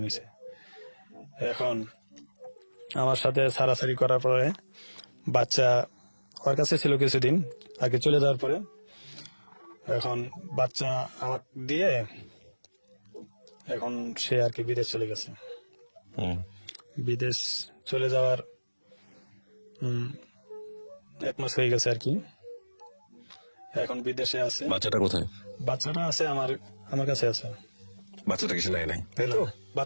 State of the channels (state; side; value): inverted; both; correlation -1.00